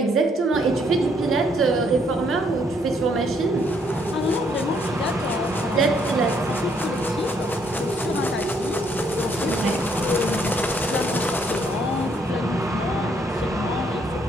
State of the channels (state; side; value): normal; both; correlation 0.69